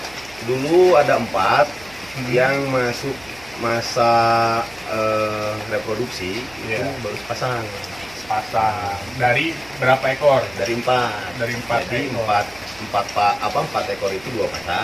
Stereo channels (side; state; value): right; noise; hum, 23 dB below the sound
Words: Dulu ada 4 yang masuk masa reproduksi, itu Iya. baru sepasang. Pasang. Dari berapa ekor? Dari 4. Dari 4 Jadi ekor. 4 ekor itu 2